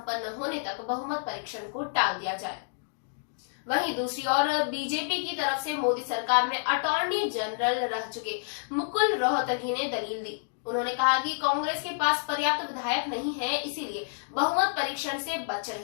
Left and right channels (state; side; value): silent; right; digital silence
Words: होने तक बहुमत परीक्षण को टाल दिया जाए। वहीं दूसरी ओर बीजेपी की तरफ से मोदी सरकार में अटॉर्नी जनरल रह चुके मुकुल रोहतगी ने दलील दी। उन्होंने कहा कि कांग्रेस के पास पर्याप्त विधायक नहीं है, इसीलिए बहुमत परीक्षण से बच